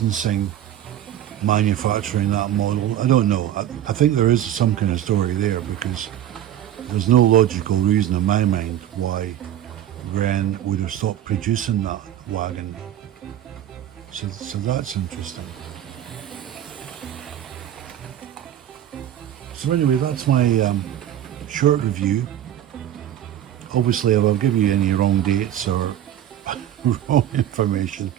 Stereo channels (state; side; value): quieter; left; 11.4 dB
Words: manufacturing that model. I don't know. I think there is some kind of story there, because there's no logical reason in my mind why Wrenn would have stopped producing that wagon. So that's interesting. So anyway, that's my short review. Obviously, if I've given you any wrong dates or wrong information,